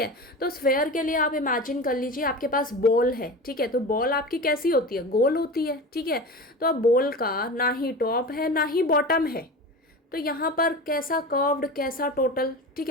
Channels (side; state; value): both; normal; correlation 0.30